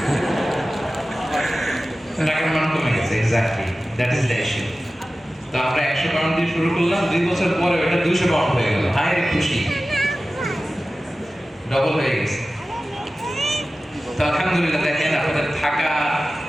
টাকার মান কমে গেছে। Exactly, that is the issue. তো আমরা 100 পাউন্ড দিয়ে শুরু করলাম, 2 বছর পরে ওটা 200 পাউন্ড হয়ে গেল। হায় রে খুশি, ডবল হয়ে গেছে। তো আলহামদুলিল্লাহ, দেখেন আপনাদের থাকা,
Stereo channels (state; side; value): normal; both; correlation 0.96